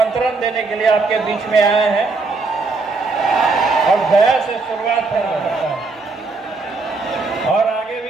देने के लिए आपके बीच में आए हैं। और गया से शुरुआत करता है और आगे भी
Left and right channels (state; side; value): quieter; left; 3.9 dB